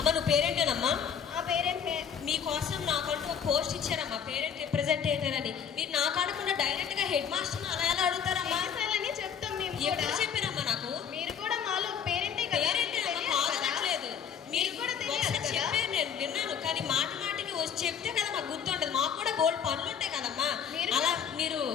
నువ్వు పేరెంటేనమ్మా? ఆ పేరెంట్. మీకోసం నాకంటూ ఒక పోస్ట్ ఇచ్చారమ్మా, పేరెంట్ రిప్రజెంటేటివ్ అని. మీరు నాకు అనకుండా డైరెక్ట్ గా హెడ్ మాస్టర్ అలా ఎలా అడుగుతారమ్మా? అని చెప్తాం మేము. ఎప్పుడు చెప్పారమ్మా నాకు? మీరు కూడా మాలో పేరెంటే కదా. పేరెంటేనమ్మా, కాదనట్లేదు. మీరు కూడా ఒకసారి చెప్పారు, నేను విన్నాను. కానీ మాటికి వచ్చి చెప్తే కదా మాకు గుర్తుంటది. మాకు కూడా గోల్డ్ పనులు ఉంటాయి కదమ్మా. అలా మీరు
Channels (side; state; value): right; quieter; 7.7 dB